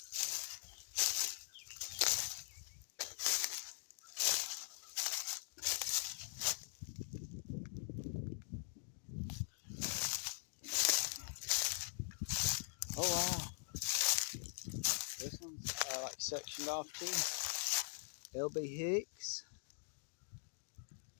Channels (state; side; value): silent; right; digital silence